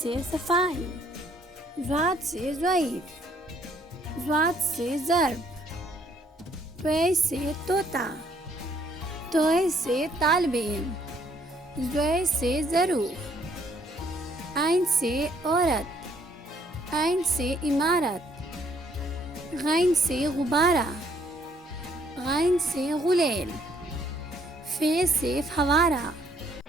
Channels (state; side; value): normal; both; correlation 0.66